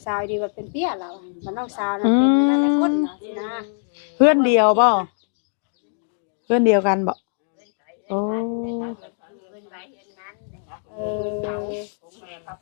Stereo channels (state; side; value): silent; right; 62 dB below the other